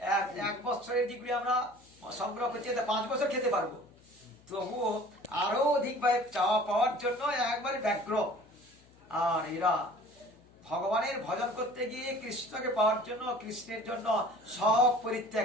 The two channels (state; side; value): noise; left; hum, 28 dB below the sound